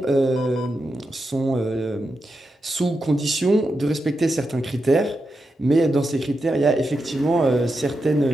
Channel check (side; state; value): both; normal; correlation 0.87